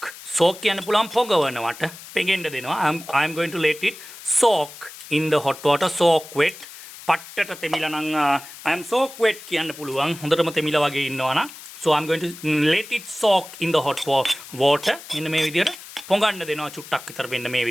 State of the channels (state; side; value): noise; left; hiss, 16 dB below the sound